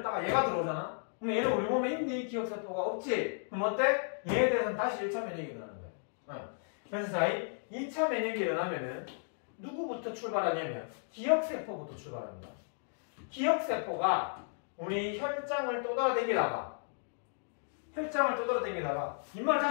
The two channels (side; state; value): right; silent; digital silence